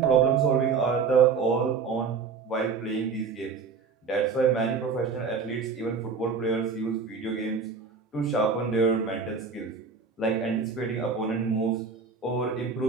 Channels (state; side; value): quieter; left; 5.3 dB